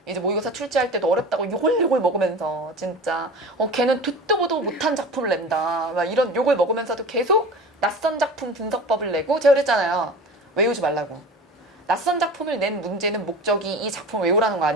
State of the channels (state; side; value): normal; both; correlation 0.35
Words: 이제 모의고사 출제할 때도 어렵다고 요걸 먹으면서 진짜 걔는 듣도 보도 못한 작품을 낸다. 막 이런 욕을 먹으면서도 계속 낯선 작품 분석법을 내고 제가 그랬잖아요. 외우지 말라고. 낯선 작품을 낸 문제는 목적이 이 작품을 외우라는 거